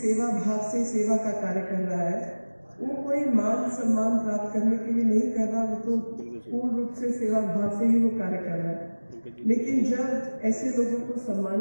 भाव से सेवा का कार्य कर रहा है, वो कोई मान सम्मान प्राप्त करने के लिए नहीं कर रहा, वो तो पूर्ण रूप से सेवा भाव से ही वो कार्य कर रहा है। लेकिन जब ऐसे लोगों को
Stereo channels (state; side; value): inverted; both; correlation -1.00